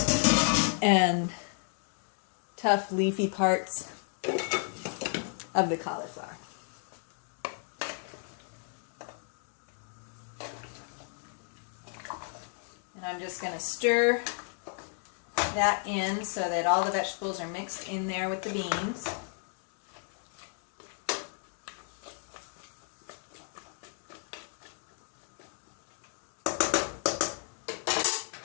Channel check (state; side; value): silent; right; 56 dB below the other